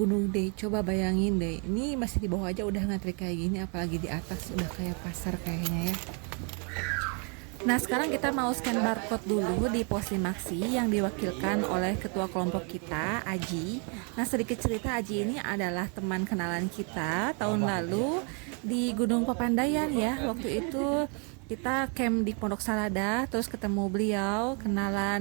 Gede. Coba bayangin deh, ini masih di bawah aja udah ngantri kayak gini, apalagi di atas udah kayak pasar kayaknya ya. Nah, sekarang kita mau scan barcode dulu di pos Limaksi yang diwakilkan oleh ketua kelompok kita, Aji. Nah, sedikit cerita, Aji ini adalah teman kenalan kita tahun lalu di Gunung Papandayan ya. Waktu itu kita camp di Pondok Salada, terus ketemu beliau,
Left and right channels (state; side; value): quieter; left; 37.4 dB